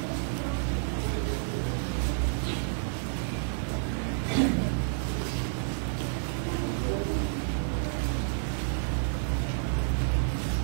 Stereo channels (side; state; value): left; silent; digital silence